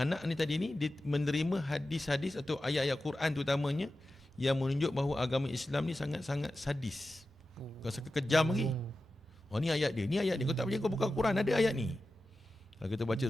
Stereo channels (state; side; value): normal; both; correlation 0.93